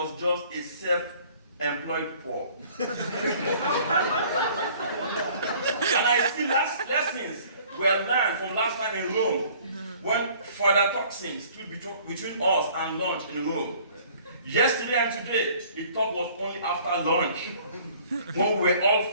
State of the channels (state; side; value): inverted; both; correlation -0.54